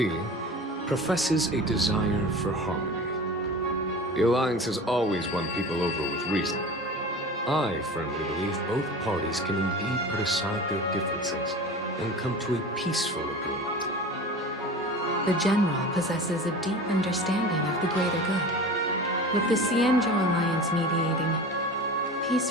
professes a desire for harmony. The Alliance has always won people over with reason. I firmly believe both parties can indeed put aside their differences and come to a peaceful agreement. The General possesses a deep understanding of the greater good. With the Cienjo Alliance mediating, peace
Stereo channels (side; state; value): both; normal; correlation 0.35